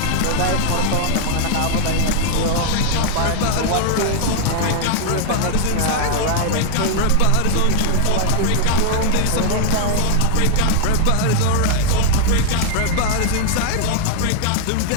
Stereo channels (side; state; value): both; different; correlation -0.01